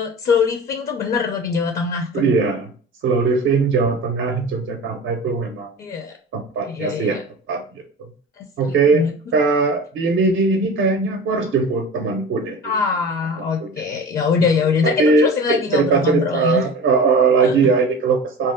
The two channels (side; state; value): both; normal; correlation 0.34